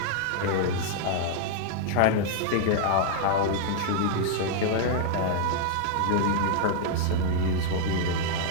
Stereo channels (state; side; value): different; both; correlation 0.00